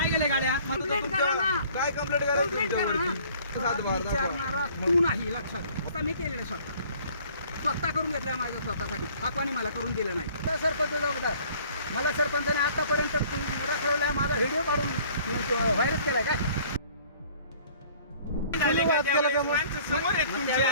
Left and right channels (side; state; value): both; inverted; correlation -0.54